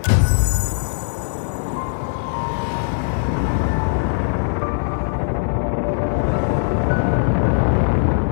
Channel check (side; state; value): right; silent; digital silence